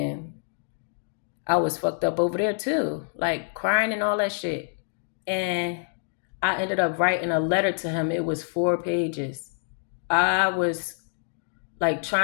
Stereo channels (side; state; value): right; silent; digital silence